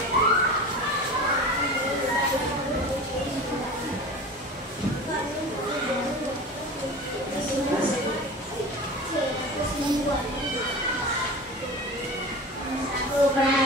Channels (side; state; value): both; normal; correlation 0.34